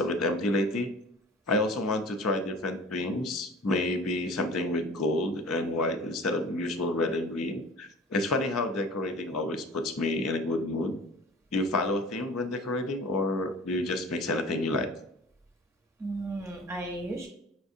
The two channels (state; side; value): normal; both; correlation 0.43